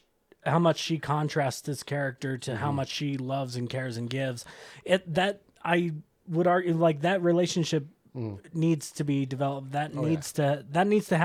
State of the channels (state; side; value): identical; both; correlation 1.00